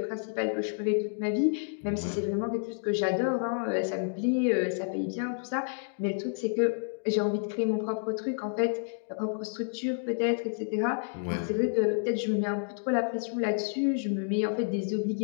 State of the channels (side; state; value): right; silent; digital silence